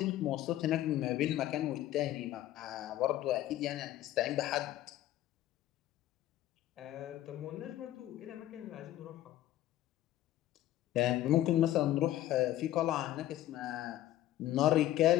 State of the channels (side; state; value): right; quieter; 13.7 dB